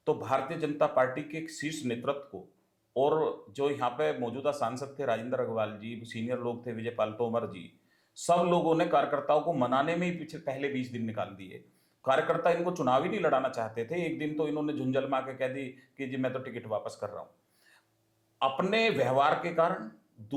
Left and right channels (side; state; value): both; identical; correlation 1.00